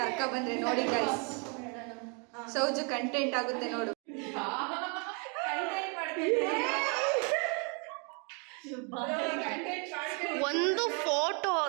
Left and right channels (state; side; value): quieter; left; 35.7 dB